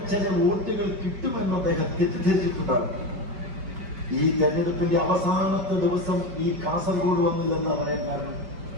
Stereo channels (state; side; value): late; left; 5.2 ms